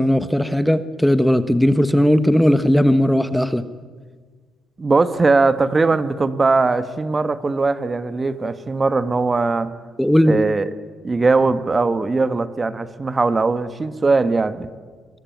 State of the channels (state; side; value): normal; both; correlation 0.95